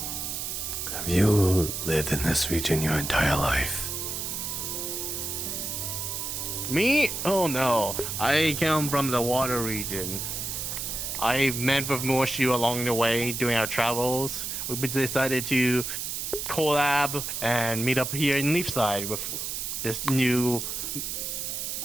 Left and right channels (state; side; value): noise; right; hiss, 4 dB below the sound